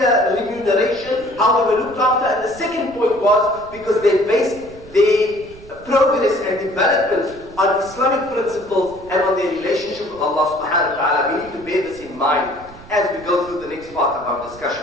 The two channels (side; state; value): right; noise; rumble, 20 dB below the sound